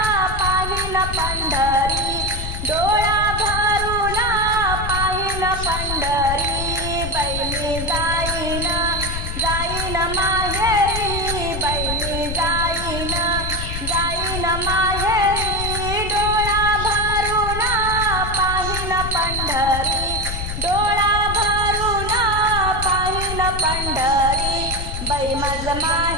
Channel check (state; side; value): noise; left; rumble, 5 dB below the sound